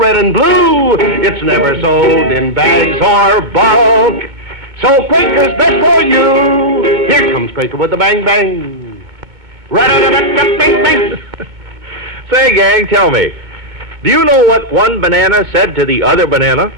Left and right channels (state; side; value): late; left; 2.2 ms